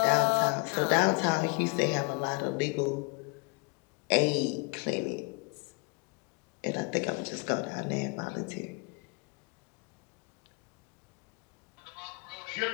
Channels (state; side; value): quieter; right; 30.6 dB